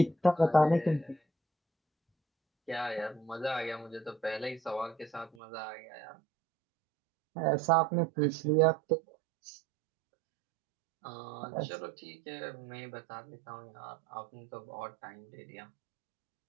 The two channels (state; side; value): drops out; left; at 5.3 s